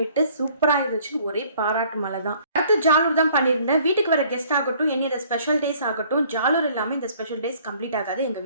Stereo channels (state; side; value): inverted; both; correlation -0.57